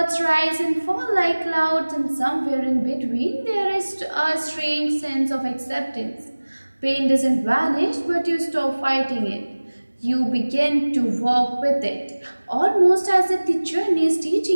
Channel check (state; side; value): inverted; both; correlation -1.00